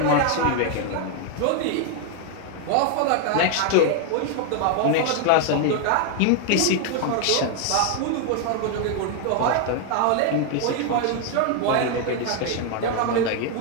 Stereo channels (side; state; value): both; different; correlation 0.00